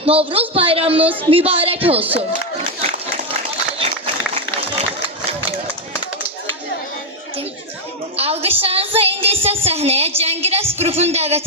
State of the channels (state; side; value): normal; both; correlation 0.04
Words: Novruz bayramınız mübarək olsun. Alqışlarınızla indi isə səhnəyə Cəngirəs qrupunu dəvət